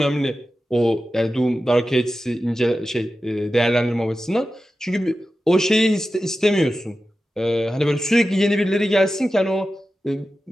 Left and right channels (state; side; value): normal; both; correlation 0.93